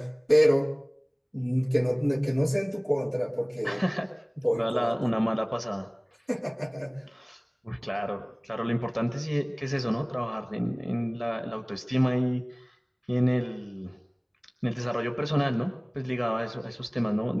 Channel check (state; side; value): identical; both; correlation 1.00